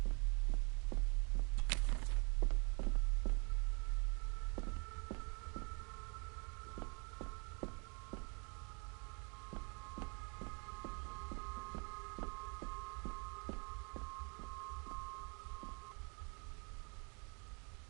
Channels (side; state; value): left; quieter; 34.0 dB